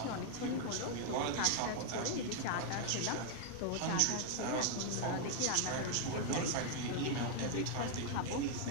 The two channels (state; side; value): different; both; correlation 0.00